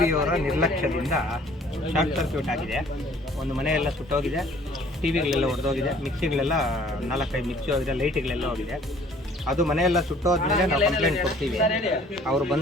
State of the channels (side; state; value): both; normal; correlation 0.55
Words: ಅವರ ನಿರ್ಲಕ್ಷ್ಯದಿಂದ ಶಾರ್ಟ್ ಸರ್ಕ್ಯೂಟ್ ಆಗಿದೆ. ಒಂದು ಮನೆಯೆಲ್ಲ ಸುಟ್ಟೋಗಿದೆ, ಟಿವಿಗಳೆಲ್ಲ ಹೊಡೆದೋಗಿದೆ, ಮಿಕ್ಸಿಗಳೆಲ್ಲ 4-5 ಮಿಕ್ಸಿ ಹೋಗಿದೆ, ಲೈಟ್ಗಳೆಲ್ಲ ಹೋಗಿದೆ. ಅದು ಮನೆಯೆಲ್ಲ ಸುಟ್ಟೋದ್ಮೇಲೆ ನಾವು ಕಂಪ್ಲೇಂಟ್ ಕೊಡ್ತೀವಿ. ಅವರು